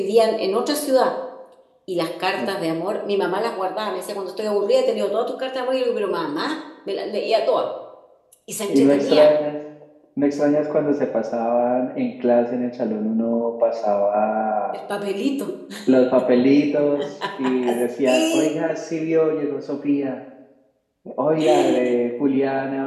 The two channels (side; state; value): both; identical; correlation 1.00